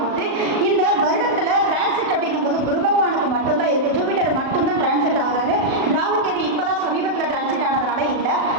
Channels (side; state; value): left; late; 38 ms